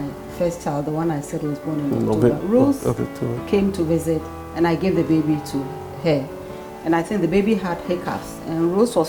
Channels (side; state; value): both; identical; correlation 1.00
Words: first child, the one I said was born in October, Rose came to visit and I gave the baby to her. And I think the baby had hiccups. And Rose was